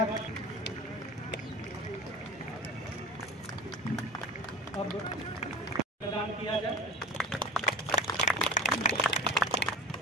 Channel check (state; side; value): normal; both; correlation 0.36